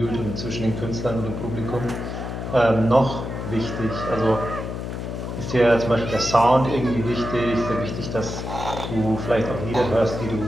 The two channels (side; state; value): left; noise; hum, 6 dB below the sound